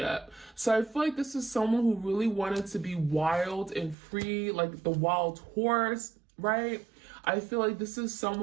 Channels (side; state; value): left; drops out; at 4.0 s